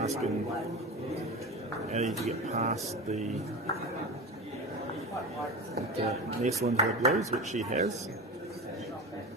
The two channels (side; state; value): both; normal; correlation 0.26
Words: Eddie to get past the nestle into the blues, which she has.